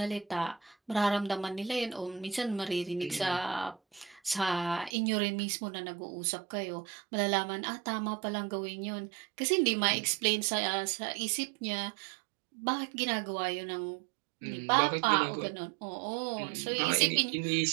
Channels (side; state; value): left; drops out; at 4.9 s